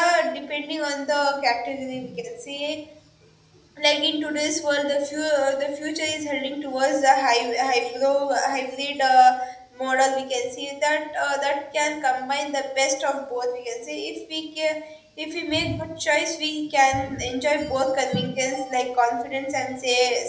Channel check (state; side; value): identical; both; correlation 1.00